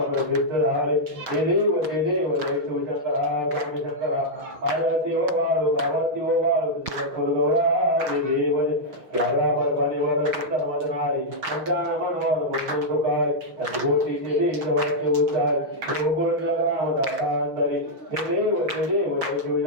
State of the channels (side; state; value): left; late; 6.2 ms